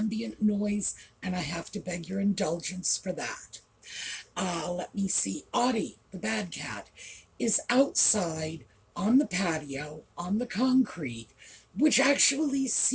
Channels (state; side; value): identical; both; correlation 1.00